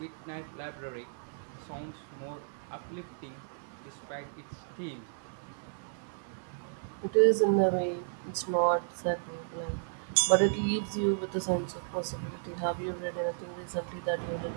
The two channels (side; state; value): left; silent; 56 dB below the other